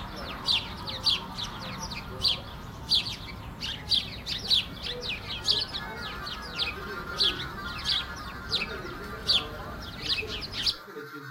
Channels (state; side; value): identical; both; correlation 1.00